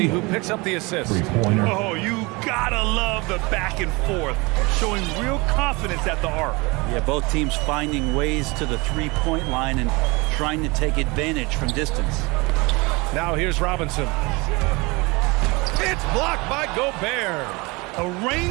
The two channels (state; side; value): quieter; left; 25.7 dB